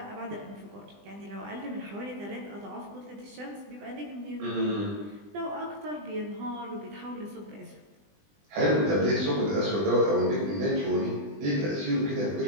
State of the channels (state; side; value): late; left; 20 ms